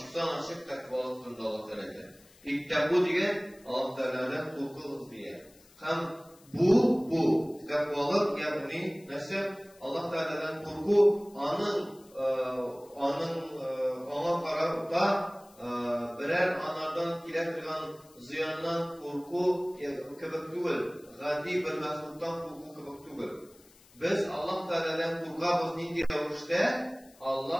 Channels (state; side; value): noise; left; hiss, 27 dB below the sound